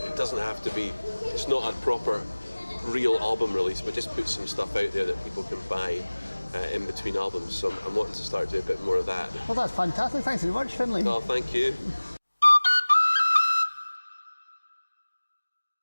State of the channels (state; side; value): inverted; both; correlation -1.00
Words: It doesn't have to be. It's not a proper, real album release, but just put some stuff out there that people can buy in between albums. So I'm wanting to start doing a bit more of that. Well, that's fantastic. Thanks very much, Findlay. Oh, thank you.